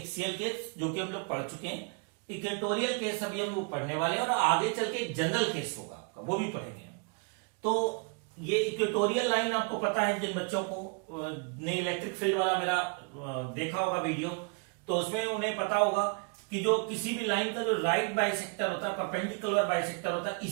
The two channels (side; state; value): left; quieter; 36.2 dB